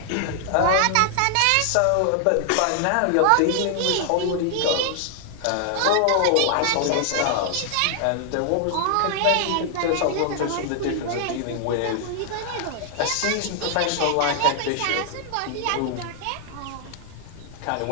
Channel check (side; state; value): both; different; correlation 0.00